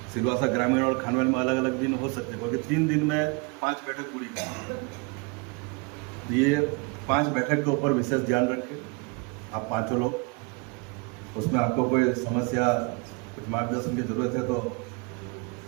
सिलवासा ग्रामीण और खानवेल में अलग अलग दिन हो सकते हैं, क्योंकि 3 दिन में 5 बैठक पूरी करनी है। ये 5 बैठक के ऊपर विशेष ध्यान रखें आप 5 लोग। उसमें आपको कोई समस्या, कुछ मार्गदर्शन की जरूरत है तो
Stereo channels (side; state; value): left; quieter; 30.3 dB